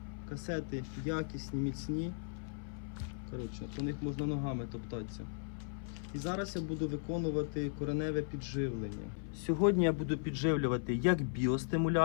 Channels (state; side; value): silent; right; 53 dB below the other